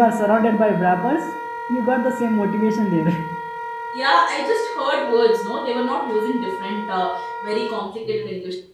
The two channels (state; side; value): identical; both; correlation 1.00